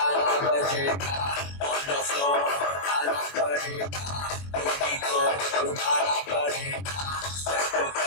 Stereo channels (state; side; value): late; right; 21 ms